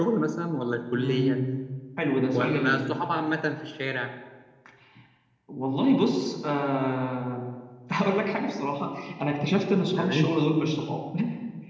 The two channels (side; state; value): both; identical; correlation 1.00